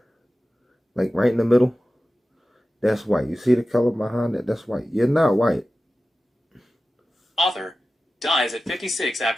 Like, right in the middle? That's white. You see the color behind it? That's white. You're not white. Author dies at 56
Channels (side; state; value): both; normal; correlation 0.95